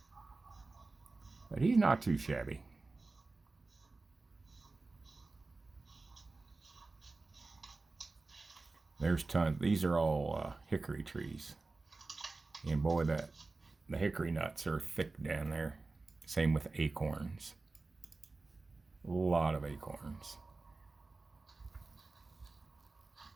But he's not too shabby. There's tons. These are all hickory trees. And boy, the hickory nuts are thick down there. Same with acorns. A lot of acorns.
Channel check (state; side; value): quieter; left; 3.5 dB